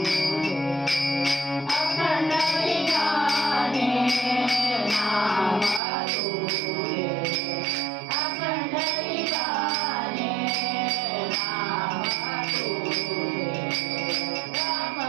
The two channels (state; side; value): drops out; left; at 5.8 s